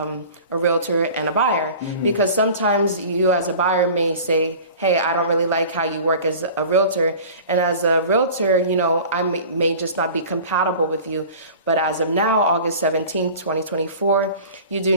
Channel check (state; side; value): inverted; both; correlation -0.41